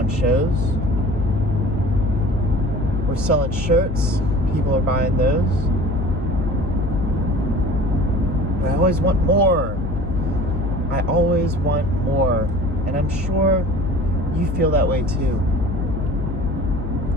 shows. We're selling shirts. People are buying those. But I always want more. I always want more. And I'm sure you feel that way too.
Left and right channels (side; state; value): left; noise; hum, 5 dB below the sound